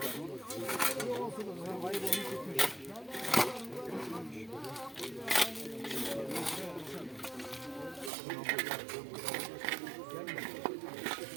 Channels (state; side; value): drops out; left; at 8.1 s